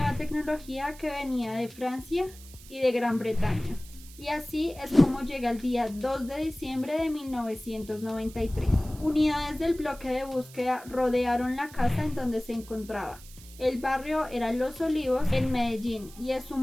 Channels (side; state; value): right; noise; hiss, 20 dB below the sound